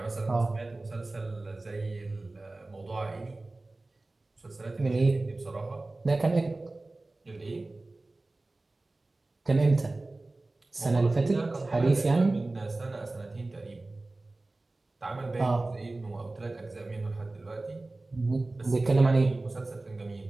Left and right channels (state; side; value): quieter; left; 3.0 dB